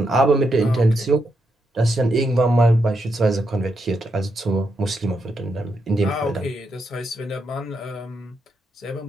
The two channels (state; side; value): normal; both; correlation 0.82